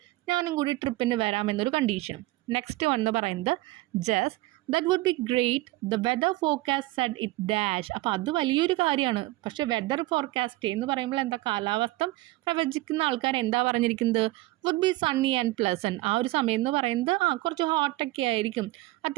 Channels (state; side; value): quieter; left; 18.9 dB